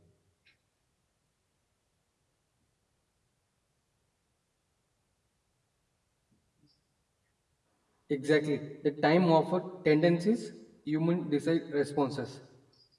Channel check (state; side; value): identical; both; correlation 1.00